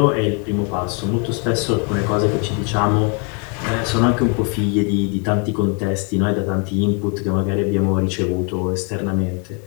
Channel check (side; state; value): right; quieter; 36.8 dB